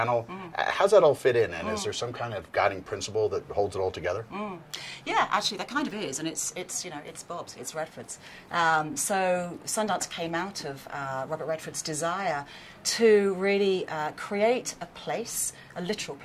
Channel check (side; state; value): both; identical; correlation 1.00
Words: How's that all fit in, and is there some kind of guiding principle that holds it all together? Yeah, actually, there kind of is, and it's Bob's, it's Redford's. So Sundance came out of Robert Redford's desire to really create a place, a literal